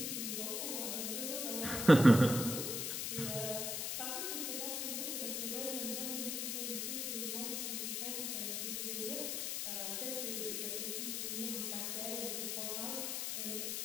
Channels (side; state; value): left; noise; hiss, 1 dB below the sound